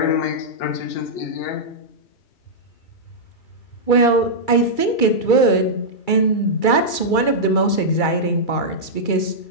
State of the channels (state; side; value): late; right; 2.3 ms